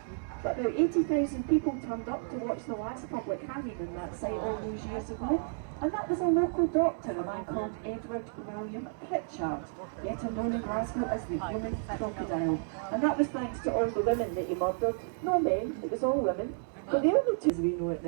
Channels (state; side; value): silent; left; 57 dB below the other